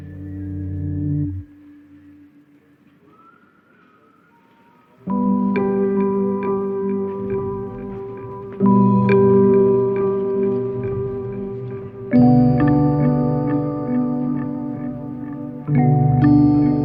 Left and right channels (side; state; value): both; identical; correlation 1.00